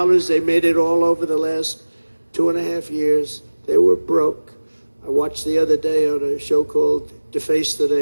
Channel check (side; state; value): both; inverted; correlation -1.00